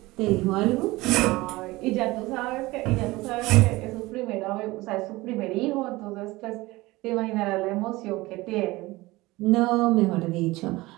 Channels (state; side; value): quieter; left; 20.3 dB